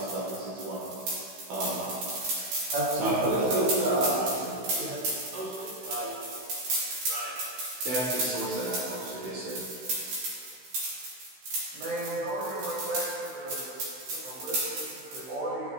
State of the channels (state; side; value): late; left; 16 ms